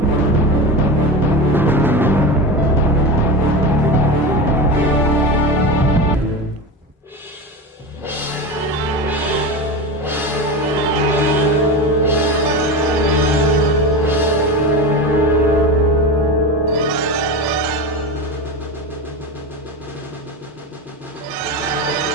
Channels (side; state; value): both; normal; correlation 0.24